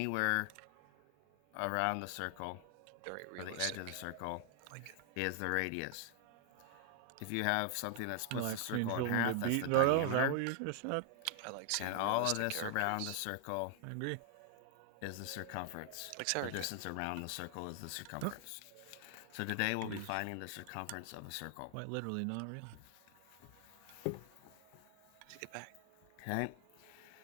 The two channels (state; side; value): different; both; correlation 0.00